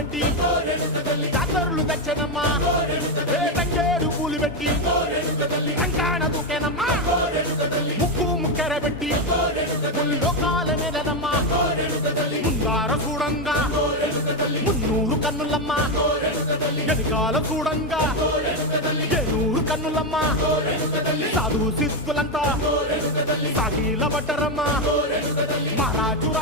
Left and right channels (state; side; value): normal; both; correlation 0.07